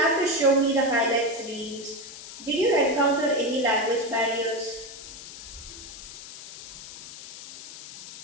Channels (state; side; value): noise; left; hiss, 13 dB below the sound